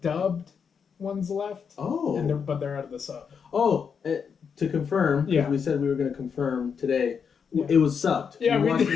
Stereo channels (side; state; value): right; quieter; 6.5 dB